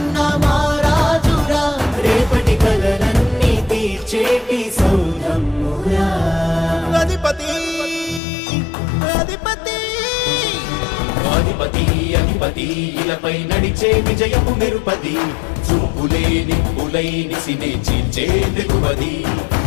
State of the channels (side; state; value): right; drops out; at 8.2 s